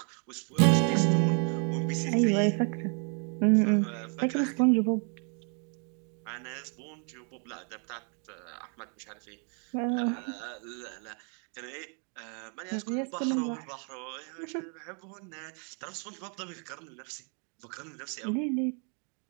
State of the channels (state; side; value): quieter; left; 39.3 dB